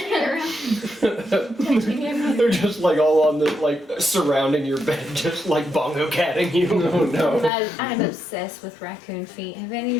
like, They're just like all on the, like, surrounding your bed, just like bongo catting you. Oh no. I'm obsessed with raccoon feet. Have any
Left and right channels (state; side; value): drops out; right; at 7.5 s